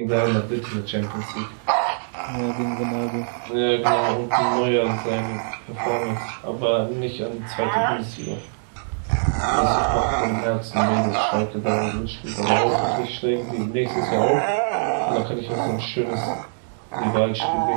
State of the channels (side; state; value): left; silent; digital silence